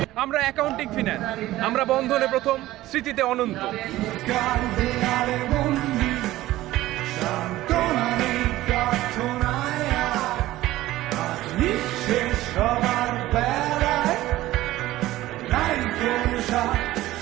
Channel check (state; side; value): quieter; left; 16.1 dB